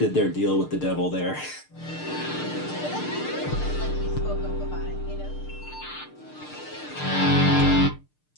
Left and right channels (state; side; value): late; right; 6.7 ms